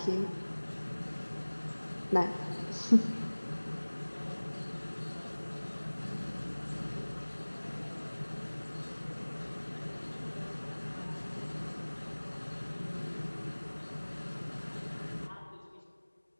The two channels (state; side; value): inverted; both; correlation -1.00